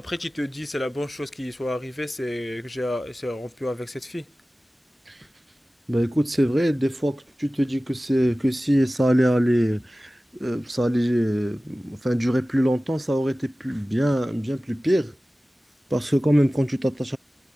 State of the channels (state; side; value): normal; both; correlation 0.97